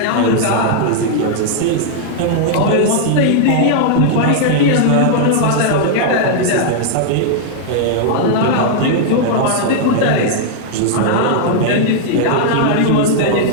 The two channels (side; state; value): both; different; correlation -0.01